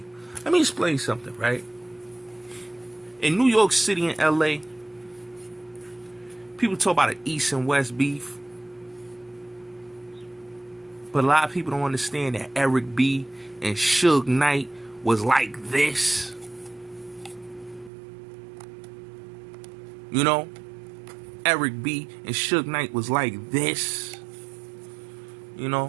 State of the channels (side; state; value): left; drops out; at 17.9 s